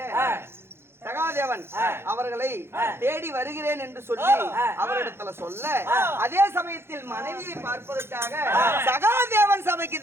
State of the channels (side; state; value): left; late; 0.12 ms